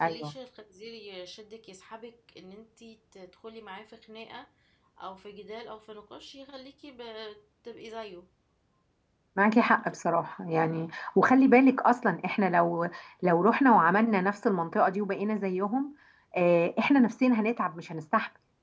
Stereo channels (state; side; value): identical; both; correlation 1.00